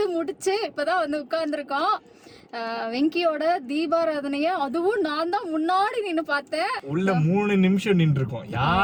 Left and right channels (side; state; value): both; identical; correlation 1.00